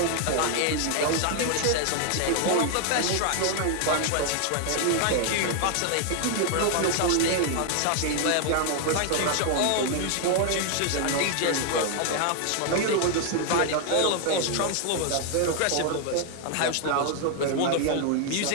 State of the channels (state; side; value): different; both; correlation 0.00